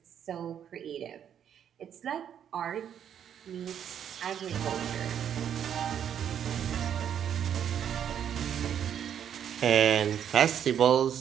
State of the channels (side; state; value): left; quieter; 9.1 dB